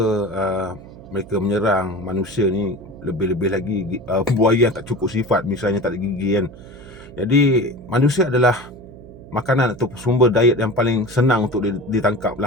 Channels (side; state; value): right; noise; hum, 18 dB below the sound